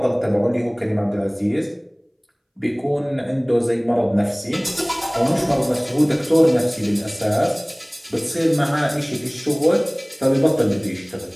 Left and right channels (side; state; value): both; identical; correlation 1.00